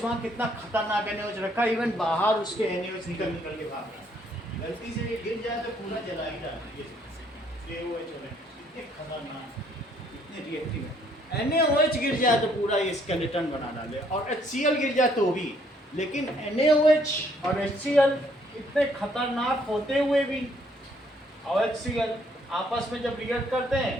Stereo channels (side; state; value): both; normal; correlation 0.66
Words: वहाँ कितना खतरनाक NaOH रखा, इवन बाहर उसके NaOH निकल निकल के भाग रहा है, गलती से ये गिर जाए तो पूरा जला ही जाता है। ये OH इतने खतरनाक, इतने रिएक्टिव है। NaOH गिर जाए तो पूरा ये स्केलेटन बना डाले, और HCl गिर जाए तो भी। लेकिन NaOH और HCl इतने खतरनाक होते हुए भी, और HCl आपस में जब रिएक्ट करते